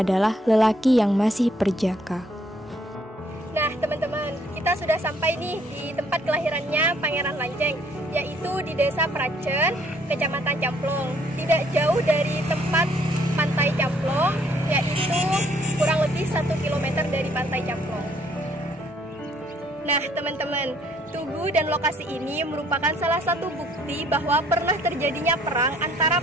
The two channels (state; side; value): normal; both; correlation 0.64